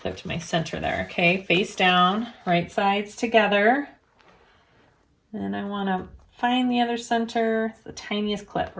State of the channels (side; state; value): both; identical; correlation 1.00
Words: to my center there. Okay, face down, right sides together. And I want to find the other center, the tiniest clip